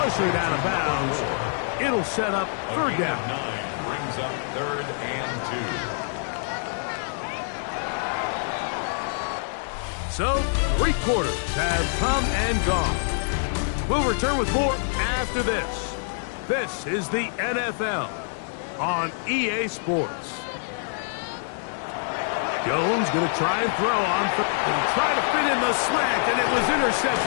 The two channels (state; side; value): silent; right; digital silence